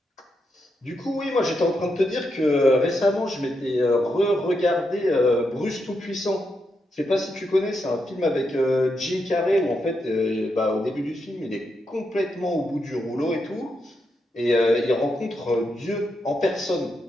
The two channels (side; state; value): both; normal; correlation 0.83